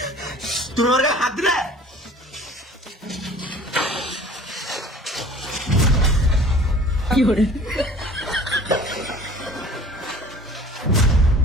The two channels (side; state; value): both; normal; correlation 0.47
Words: তুমি আমার গায়ে হাত দিলে?